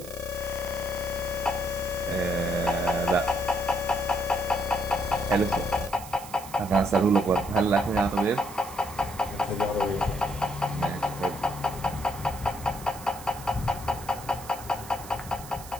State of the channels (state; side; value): noise; right; hiss, 15 dB below the sound